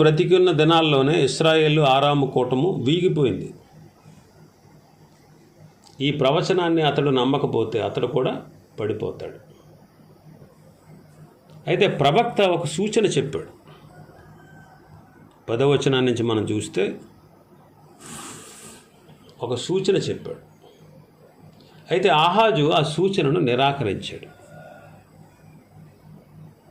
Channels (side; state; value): both; identical; correlation 1.00